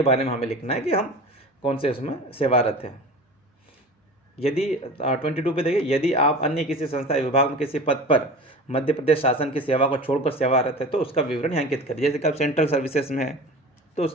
बारे में हमें लिखना है कि हम कौन से उसमें सेवारत हैं। यदि 22 पे देखिए, यदि आप अन्य किसी संस्था विभाग में किसी पद पर मध्य प्रदेश शासन की सेवा को छोड़कर सेवारत है तो उसका विवरण यहाँ अंकित करें। जैसे कि आप सेंट्रल सर्विसेज में है तो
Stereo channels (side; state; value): both; normal; correlation 0.36